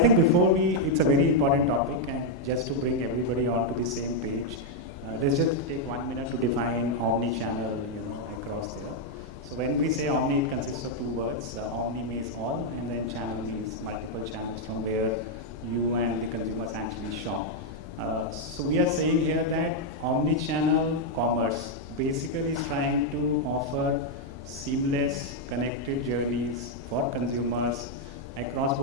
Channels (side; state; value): both; normal; correlation -0.01